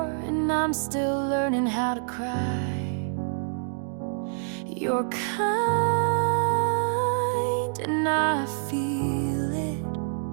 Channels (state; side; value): silent; left; digital silence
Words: and I'm still learning how to cry. You're kind and I feel it,